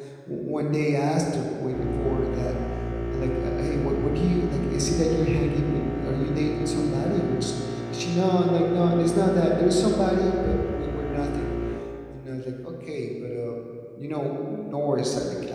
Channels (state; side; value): identical; both; correlation 1.00